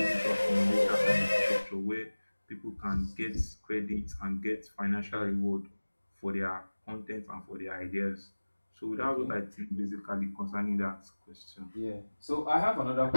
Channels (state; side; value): inverted; both; correlation -1.00